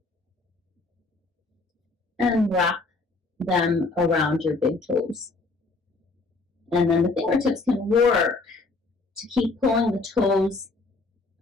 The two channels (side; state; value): right; quieter; 3.6 dB